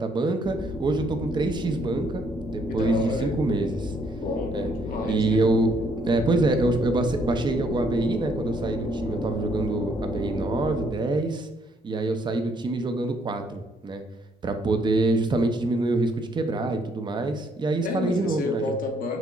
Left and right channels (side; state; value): both; normal; correlation 0.68